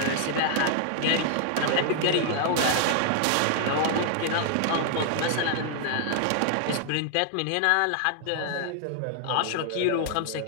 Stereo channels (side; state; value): both; different; correlation 0.00